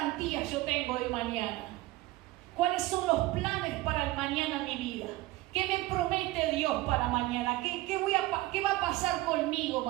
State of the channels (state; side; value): quieter; left; 18.4 dB